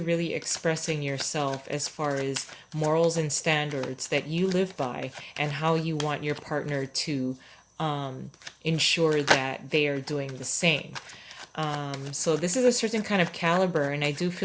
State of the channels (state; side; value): identical; both; correlation 1.00